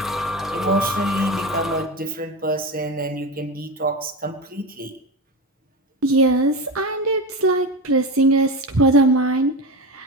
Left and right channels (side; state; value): both; normal; correlation 0.21